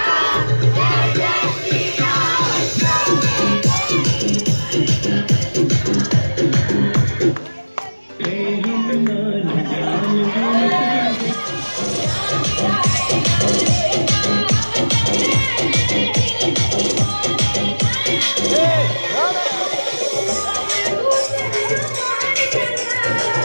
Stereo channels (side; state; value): both; inverted; correlation -1.00